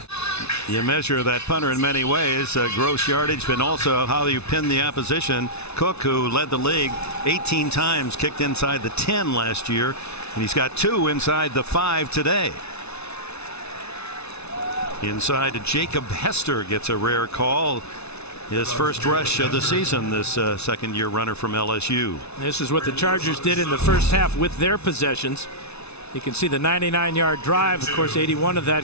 You measure that punter in many ways, gross yardage, but also how you pin the opposition. Cook, who led the league 18 times, kicked inside the 10 last year, and he's got 2 inside the 5 today. Inside, Jacob Hester gets a rare call. His first rush of the season, this 2nd-year runner from LSU. This is what the Chargers did in the first half with their possessions. You can see the 99-yard drive. Of course, 81 of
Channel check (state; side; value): late; right; 0.80 ms